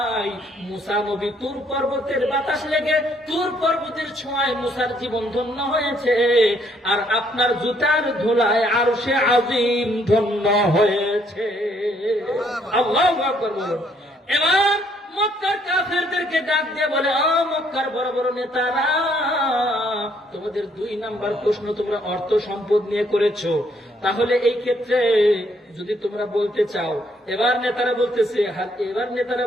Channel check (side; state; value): both; normal; correlation 0.68